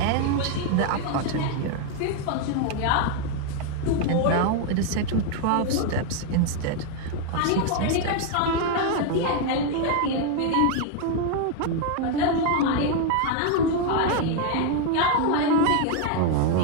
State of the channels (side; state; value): both; different; correlation 0.00